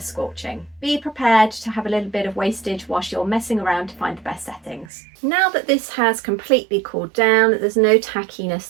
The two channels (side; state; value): left; drops out; at 4.9 s